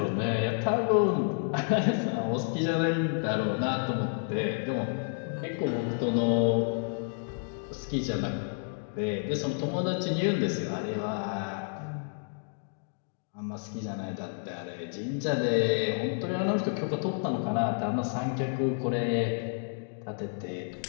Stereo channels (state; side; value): silent; right; digital silence